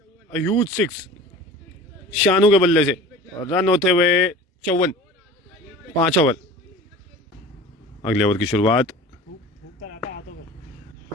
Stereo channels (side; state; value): both; normal; correlation 0.40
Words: ह्यूज 6 शानू के बल्ले से। रन होते हुए 54। 5 ओवर। अगले ओवर की शुरुआत।